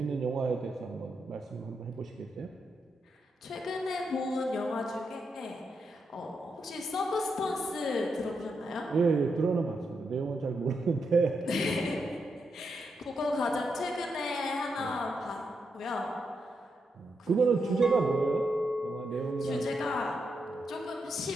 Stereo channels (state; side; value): normal; both; correlation 0.83